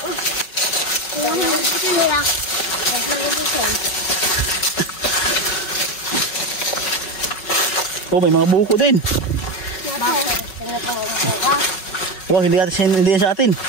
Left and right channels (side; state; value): right; late; 5.4 ms